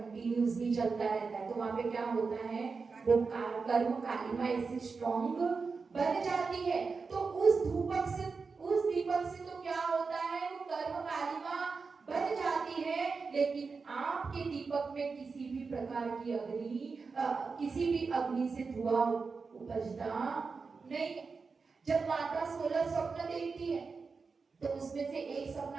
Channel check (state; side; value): quieter; left; 4.7 dB